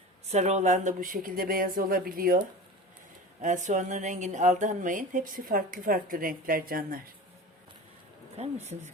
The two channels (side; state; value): both; normal; correlation 0.33